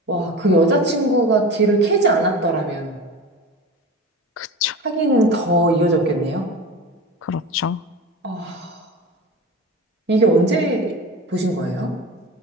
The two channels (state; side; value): normal; both; correlation 0.31